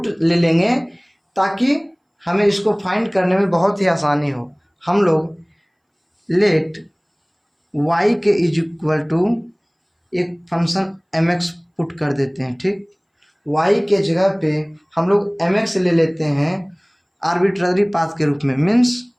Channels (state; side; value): identical; both; correlation 1.00